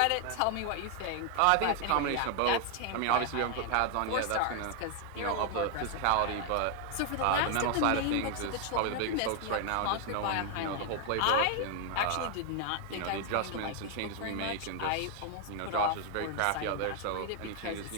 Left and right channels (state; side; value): different; both; correlation 0.00